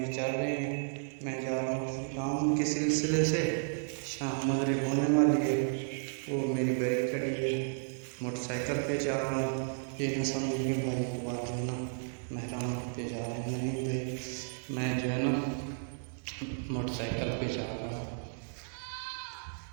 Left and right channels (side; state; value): left; silent; 56 dB below the other